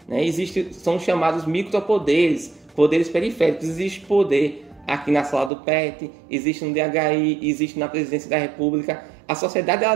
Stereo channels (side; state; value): left; drops out; at 5.5 s